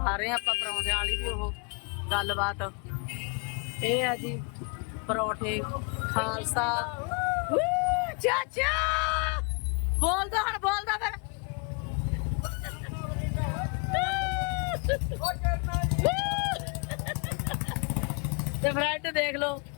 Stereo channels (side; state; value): right; quieter; 35.3 dB